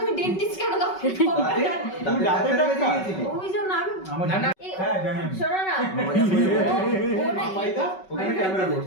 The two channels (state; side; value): late; right; 5.3 ms